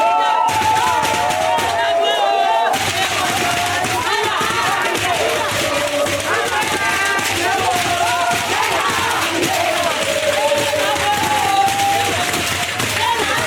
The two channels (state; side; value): identical; both; correlation 1.00